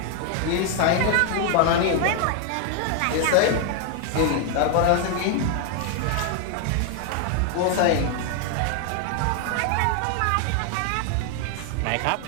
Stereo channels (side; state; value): both; different; correlation 0.00